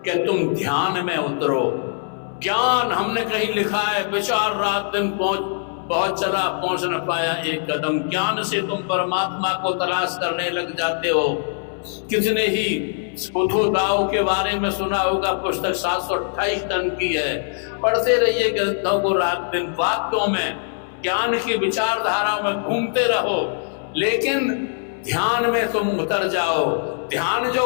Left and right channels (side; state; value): right; silent; 61 dB below the other